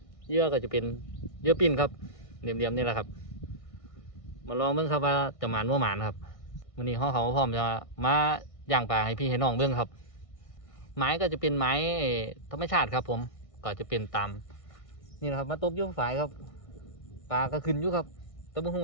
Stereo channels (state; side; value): late; right; 1.6 ms